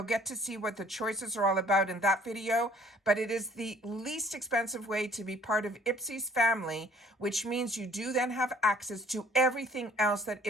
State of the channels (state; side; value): normal; both; correlation 0.56